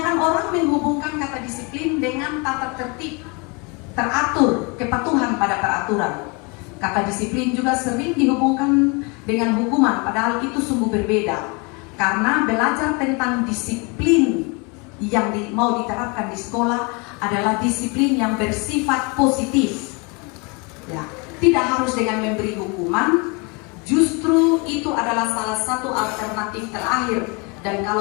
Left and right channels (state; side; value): quieter; right; 30.6 dB